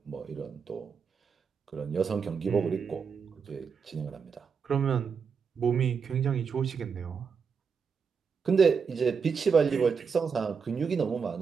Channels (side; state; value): left; quieter; 6.0 dB